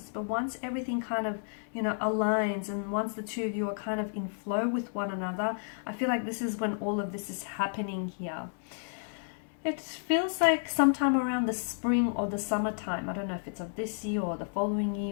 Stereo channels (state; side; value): silent; right; digital silence